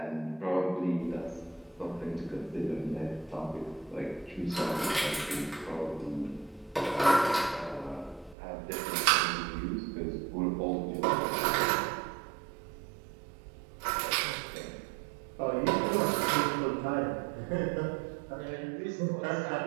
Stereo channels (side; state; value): left; drops out; at 8.3 s